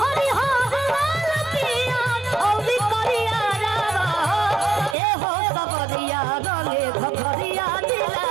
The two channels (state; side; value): drops out; left; at 5.0 s